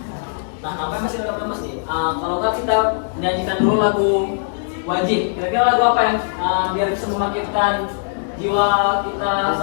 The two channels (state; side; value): silent; right; digital silence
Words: Nah, apa masih ada mas nih? Kalau nggak kita nyanyikan dulu lagu wajib. Kira-kira lagu apa yang biar bisa membangkitkan jiwa kita